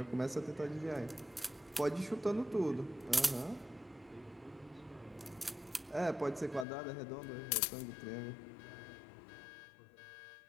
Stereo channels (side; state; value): right; drops out; at 6.7 s